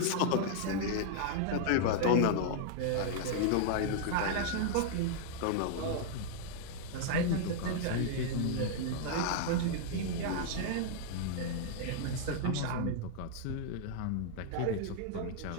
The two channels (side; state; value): both; different; correlation -0.01